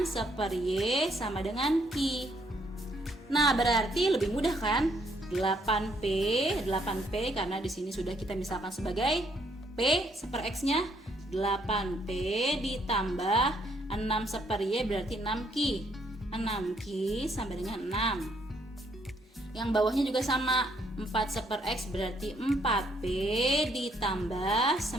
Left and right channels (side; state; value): both; normal; correlation 0.70